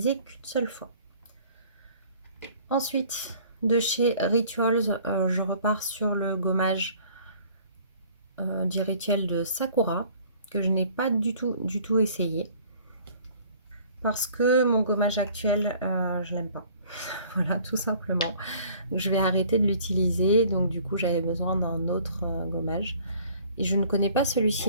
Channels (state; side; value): inverted; both; correlation -0.54